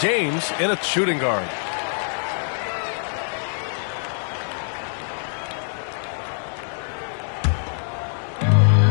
James in a shooting guard.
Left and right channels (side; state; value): right; silent; digital silence